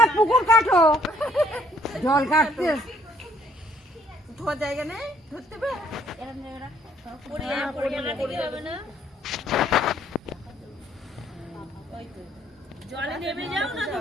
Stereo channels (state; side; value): normal; both; correlation 0.64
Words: না পুকুর কাটো, জল কাটতে খাওয়ার জায়গা নেই, ধরতে হবে। জলে নেমে যাও না